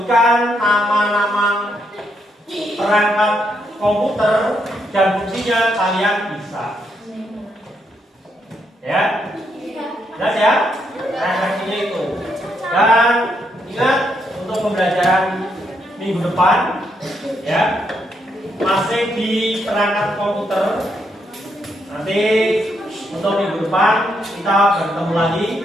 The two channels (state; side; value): normal; both; correlation 0.77